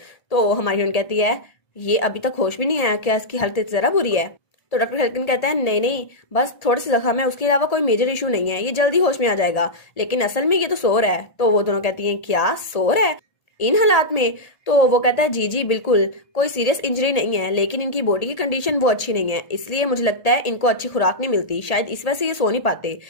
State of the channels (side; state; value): right; late; 1.8 ms